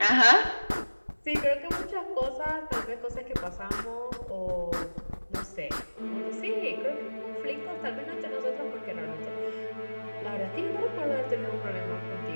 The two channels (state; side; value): inverted; both; correlation -1.00